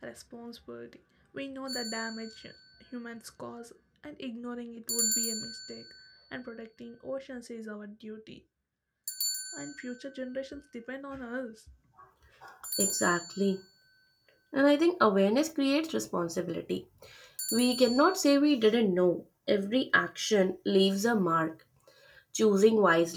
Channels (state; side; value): identical; both; correlation 1.00